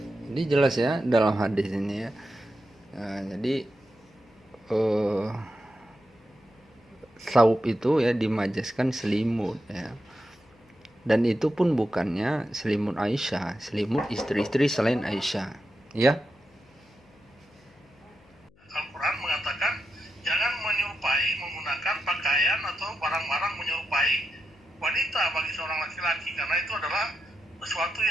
ini jelas ya dalam hadis ini ya. Jadi saub itu ya dimajaskan selimut ya. Dan itu pun bukannya selimut Aisyah, selimut istri-istri selain Aisyah, ya. Al-Quran mengatakan jangan menyerupai menggunakan pakaian atau barang-barang menyerupai wanita bagi seorang laki-laki, karena itu adalah sesuatu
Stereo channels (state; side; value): noise; left; hum, 30 dB below the sound